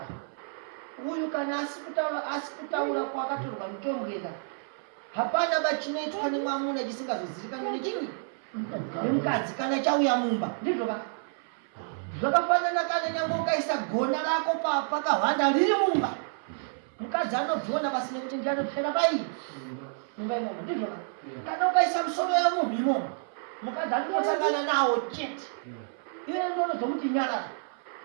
Uyu kana asi kutaura kwakatorwa mitombo yega. Hapana bachinoitwa nemwamuna chisingazozivikanwi nechinyi. Nemukadzi kana chauya mumba. Ndizvo ka. Zvakafanana kana nyangwe ukaisa gona rako pakahwanda riri mumba. Mukadzi anobvona basi nekuti ndianopfera pai. Mumba imomo ndizvo ka. Kana ukaisa musoro yamunhu imomo. Mukadzi anotsangana nawo chete. iwe ndono zokuti nyara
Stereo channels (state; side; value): silent; left; 58 dB below the other